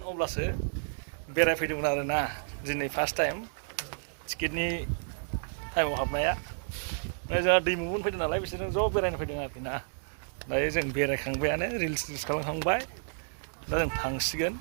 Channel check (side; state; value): left; silent; digital silence